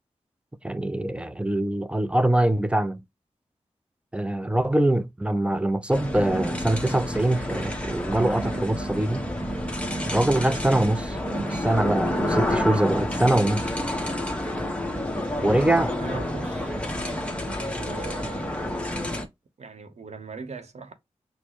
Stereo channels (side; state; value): both; normal; correlation 0.91